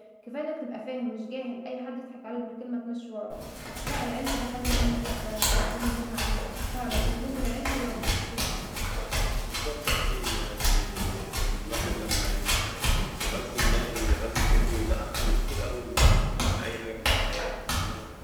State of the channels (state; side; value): identical; both; correlation 1.00